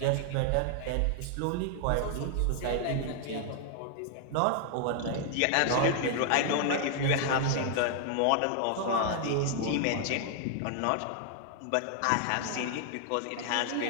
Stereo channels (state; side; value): different; both; correlation 0.00